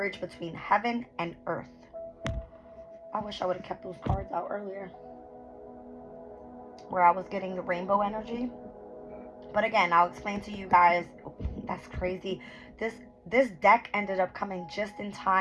between heaven and earth. I wish I would have kept those cards out earlier, where I was getting the rainbow energy. But again, I'll explain to you guys. That's crazy. This deck ended up coming just in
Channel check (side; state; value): both; identical; correlation 1.00